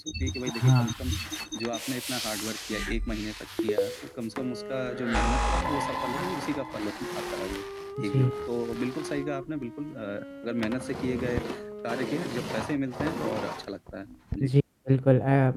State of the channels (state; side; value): identical; both; correlation 1.00